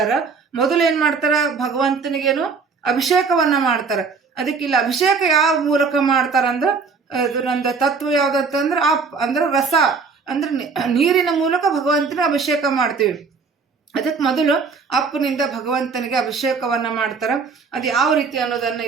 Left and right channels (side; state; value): left; quieter; 5.1 dB